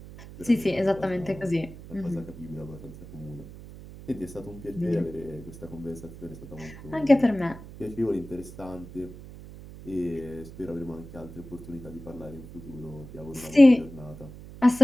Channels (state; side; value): noise; right; hum, 15 dB below the sound